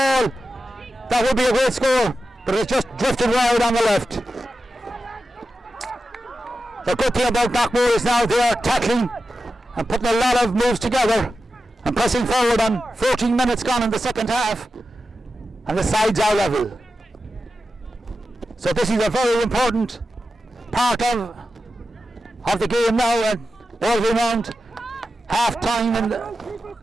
That would be a great score, but it's just drifted wide on the left. The good thing about Knockmore is now they are tackling and putting a lot of moves together and pressing forward on 14 minutes gone in the second half, and the sides are level. So this is a very important part of the game now, and all around half time and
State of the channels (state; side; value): normal; both; correlation 0.92